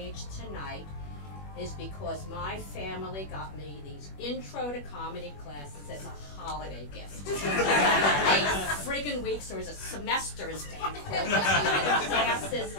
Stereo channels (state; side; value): late; right; 21 ms